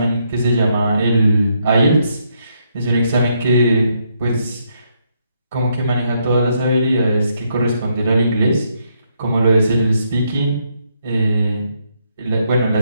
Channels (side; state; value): both; inverted; correlation -0.76